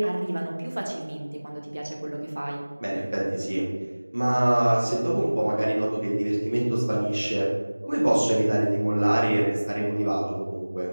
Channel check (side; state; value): both; inverted; correlation -1.00